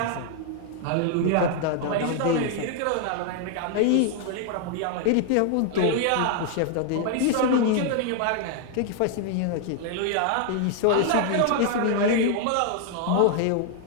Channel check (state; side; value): different; both; correlation 0.00